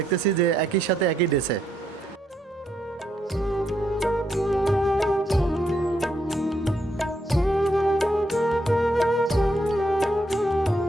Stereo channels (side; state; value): both; normal; correlation 0.77